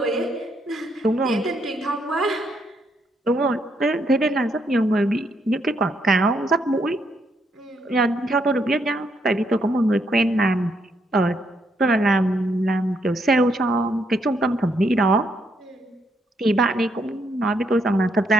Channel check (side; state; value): both; normal; correlation 0.75